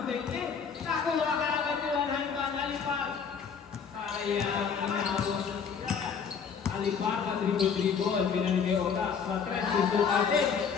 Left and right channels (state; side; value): quieter; right; 6.4 dB